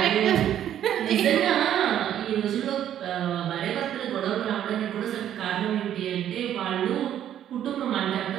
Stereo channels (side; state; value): left; quieter; 10.7 dB